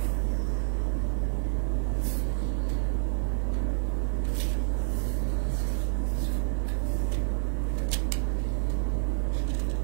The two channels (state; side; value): silent; left; 59 dB below the other